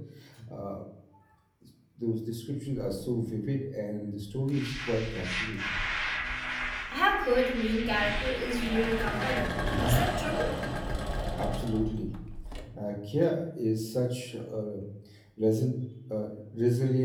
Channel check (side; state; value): both; identical; correlation 1.00